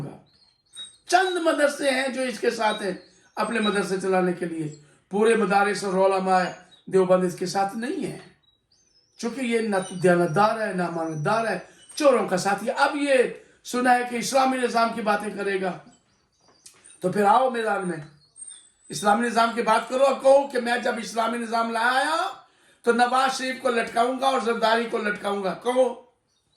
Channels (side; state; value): both; identical; correlation 1.00